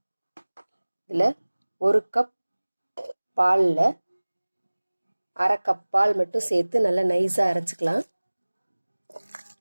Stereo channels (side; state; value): both; inverted; correlation -1.00